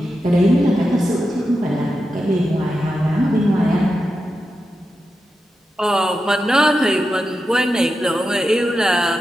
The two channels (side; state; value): both; normal; correlation 0.89